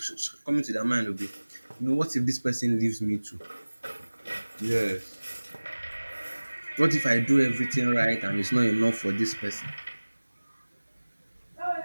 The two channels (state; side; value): inverted; both; correlation -1.00